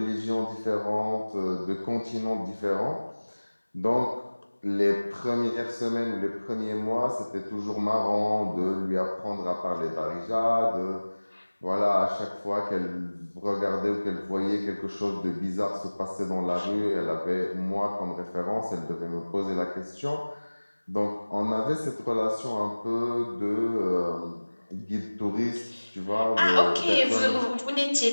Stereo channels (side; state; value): both; inverted; correlation -1.00